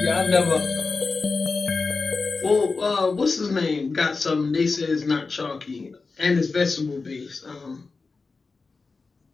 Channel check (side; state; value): right; quieter; 4.2 dB